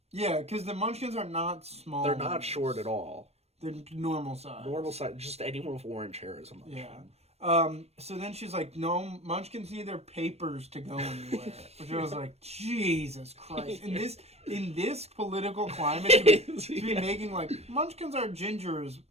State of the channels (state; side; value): late; left; 0.30 ms